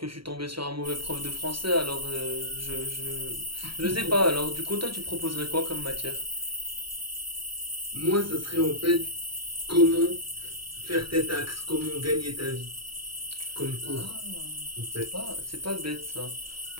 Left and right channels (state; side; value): late; left; 0.74 ms